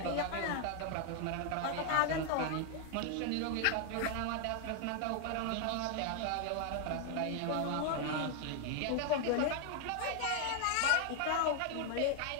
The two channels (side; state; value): both; different; correlation 0.00